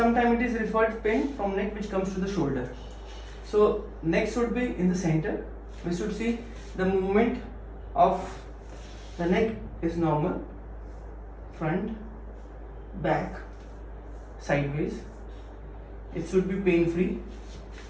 it is referred pain from neck which comes to the shoulder. So neck should be in the center. We should see the movement of the neck is normal, front, back, sideways. It should be pain free.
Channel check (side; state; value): both; identical; correlation 1.00